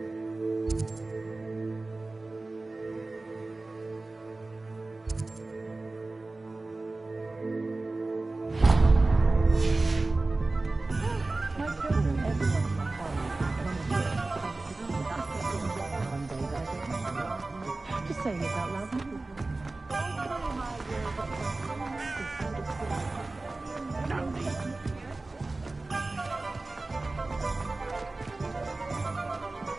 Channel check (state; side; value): quieter; left; 3.2 dB